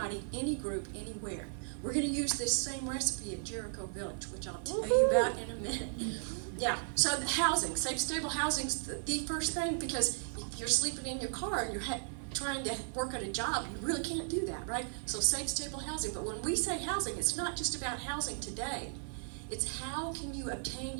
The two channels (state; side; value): silent; left; 54 dB below the other